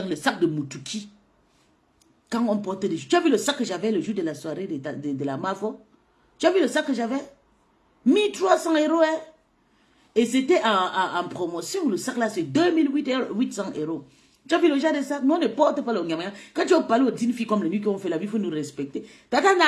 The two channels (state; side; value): identical; both; correlation 1.00